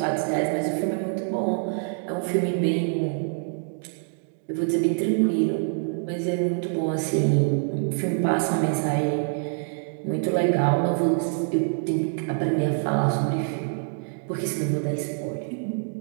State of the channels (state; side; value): silent; left; digital silence